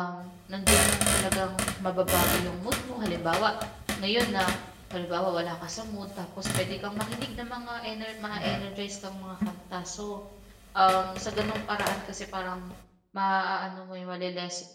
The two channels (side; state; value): both; identical; correlation 1.00